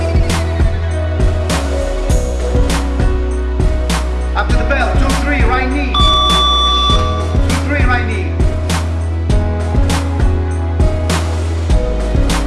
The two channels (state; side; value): identical; both; correlation 1.00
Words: After the bell. 2-3, right knee. 2-3, right knee.